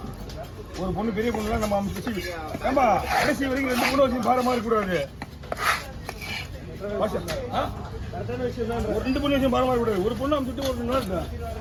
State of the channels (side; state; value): both; identical; correlation 1.00